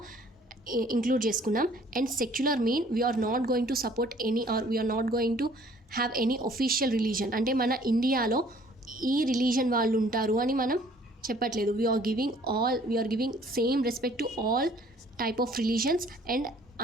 ఇంక్లూడ్ చేసుకున్నాం. And secular mean we are not going to support any or we are not going to have any official religion. అంటే మన ఇండియాలో ఈ రిలీజన్ వాళ్ళు ఉంటారు అని మనం చెప్పట్లేదు. We are giving same respect to all type of religions and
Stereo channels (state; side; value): normal; both; correlation 0.57